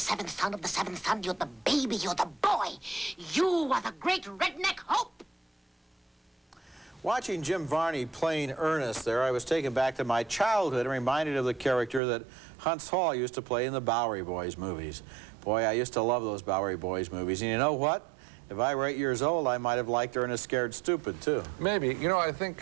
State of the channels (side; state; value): left; drops out; at 12.0 s